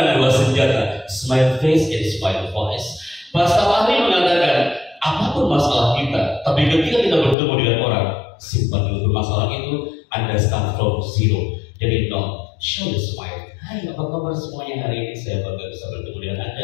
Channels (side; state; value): right; drops out; at 7.4 s